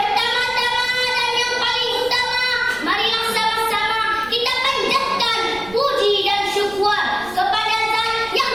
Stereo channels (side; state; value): right; noise; rumble, 19 dB below the sound